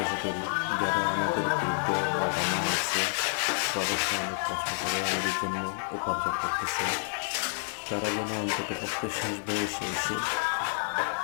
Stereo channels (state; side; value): silent; right; digital silence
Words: করি যারা আমাদের বৃদ্ধ বাবা মা আছে, প্রবাসে অনেক কষ্ট করে আমাদের জন্য উপার্জন করতেছে, তারা যেন অন্তত পক্ষে শেষ বয়সে এসে